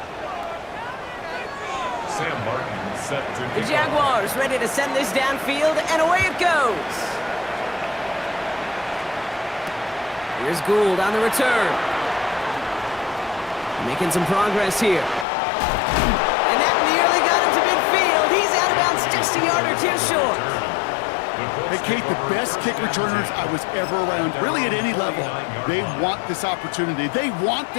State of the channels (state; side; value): drops out; right; at 15.2 s